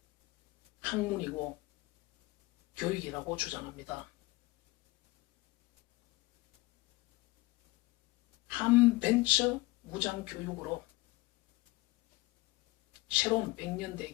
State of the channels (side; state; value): right; quieter; 20.8 dB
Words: 학문이고 교육이라고 주장합니다. 한벤처 무장교육으로 새로운